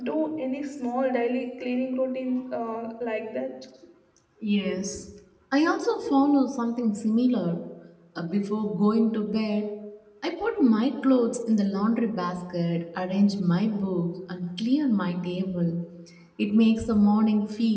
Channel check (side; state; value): both; identical; correlation 1.00